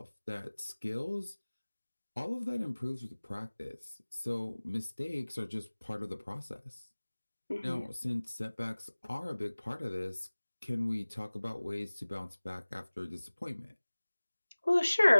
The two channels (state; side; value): inverted; both; correlation -1.00